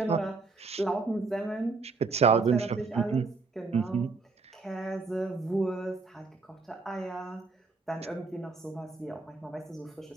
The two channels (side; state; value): left; quieter; 4.0 dB